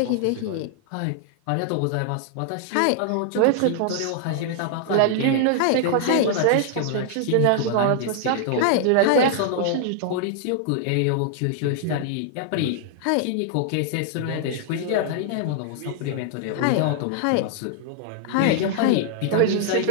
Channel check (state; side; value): different; both; correlation 0.00